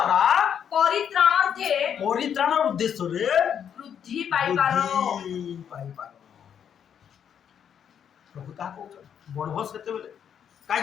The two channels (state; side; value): quieter; right; 8.4 dB